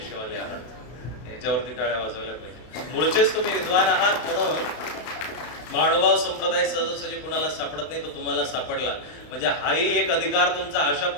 आहात, याच्यावरती टाळ्या वाजवल्या पाहिजे. मूळचेच तुम्ही विद्वान आहात म्हणून माणभाव संप्रदाय सहजासहजी कुणाला सापडत नाही, तो तुम्हाला सापडला. म्हणजे हाही एक अधिकार तुमचा अशा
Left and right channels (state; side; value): late; right; 33 ms